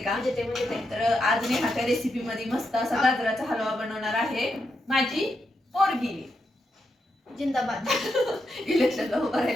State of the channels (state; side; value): normal; both; correlation 0.84